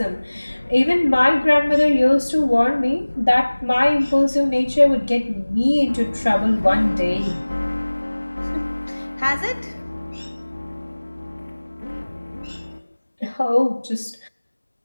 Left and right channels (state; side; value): inverted; both; correlation -1.00